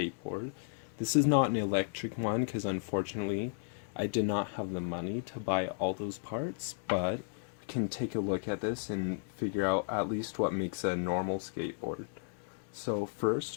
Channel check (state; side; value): silent; right; digital silence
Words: This is not an electric one because unfortunately I did not have the money to buy all those parts, but we can take a look at this and figure out at least what makes a normal skateboard. So